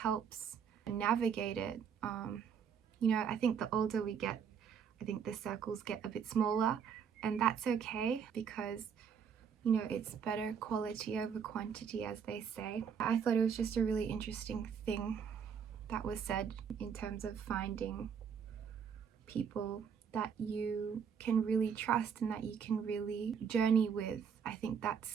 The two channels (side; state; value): left; quieter; 7.1 dB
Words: navigate it. I think the older we get, I think the circles get a bit smaller, and that's okay, because it's better quality over quantity, as they say. I thought it was just a really interesting thing that was said in terms of finding people that you can really trust and that you can really journey with. I think